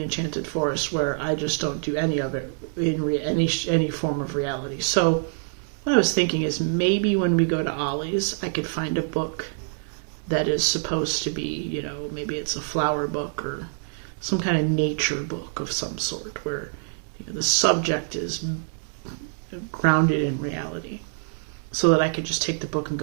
Forest where I just don't do any of it in any form of reality. So what I was thinking is maybe when we go to Ollie's, I could find a book that is supposed to be, maybe it's a flower book or some kind of nature book of some sort where the subject is grounded in reality, so that I could just take the book and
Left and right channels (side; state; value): left; silent; digital silence